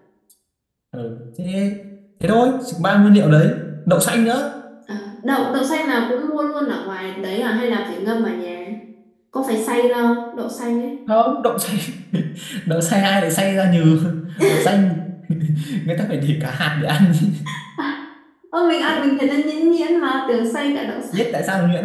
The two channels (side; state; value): both; identical; correlation 1.00